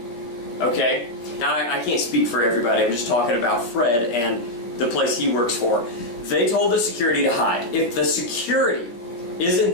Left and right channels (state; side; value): late; right; 17 ms